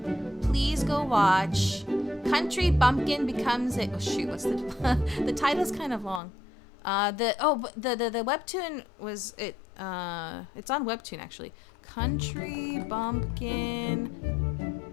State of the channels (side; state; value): right; drops out; at 6.2 s